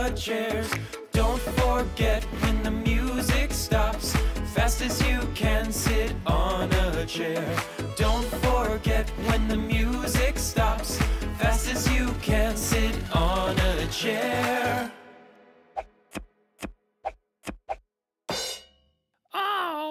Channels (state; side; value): identical; both; correlation 1.00